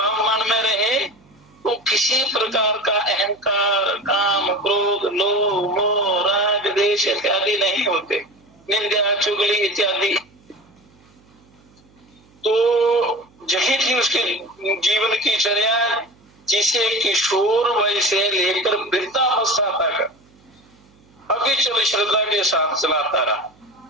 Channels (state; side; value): noise; right; hum, 30 dB below the sound